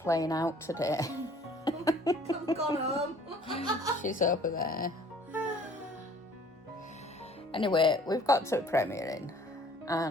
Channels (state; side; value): normal; both; correlation 0.54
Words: out today. I've gone home. She's over there. Anyway, we've got to the premiere in,